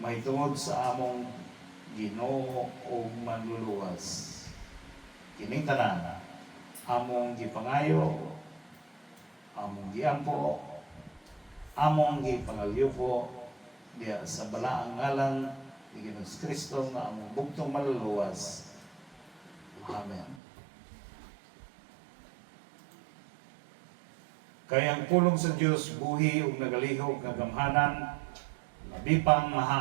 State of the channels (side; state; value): left; drops out; at 20.4 s